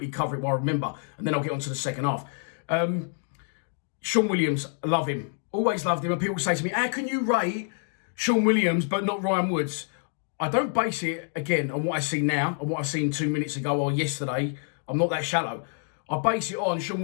cover it while I remember, and then I'll get on to the second half. Sean Williams, I love him. Always loved him. And people say to me, how can you rate Sean Williams but not Ryan Woods? I don't base it, again, on what I see now, and what I seen 2 minutes ago or yesterday. I'm not that shallow. I base it on Sean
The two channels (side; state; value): right; silent; 60 dB below the other